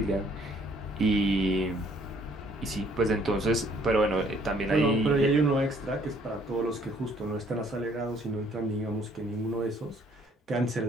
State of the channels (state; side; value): normal; both; correlation 0.62